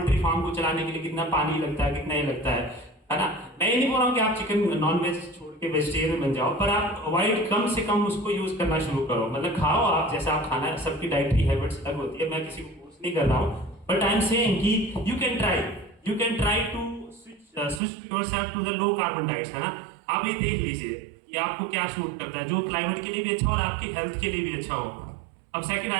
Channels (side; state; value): left; drops out; at 17.8 s